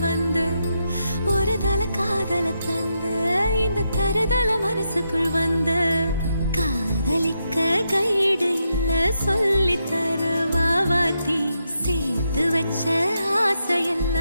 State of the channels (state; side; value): inverted; both; correlation -0.83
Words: வந்து ஒரு தல காதல தந்து இந்த தருதல மனசுக்குள் வந்து காதலிக்க கைடு இல்ல சொல்லி தர வாவாத்தி சேர்த்து வச்ச